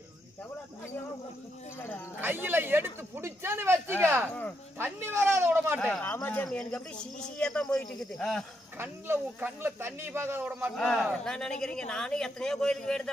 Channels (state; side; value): normal; both; correlation 0.79